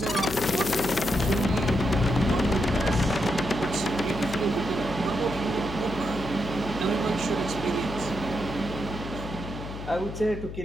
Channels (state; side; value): noise; left; hum, 9 dB below the sound